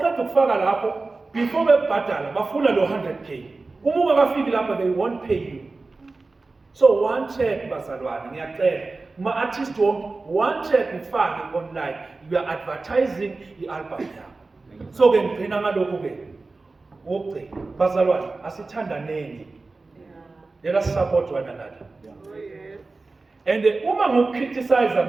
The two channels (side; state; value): left; quieter; 3.6 dB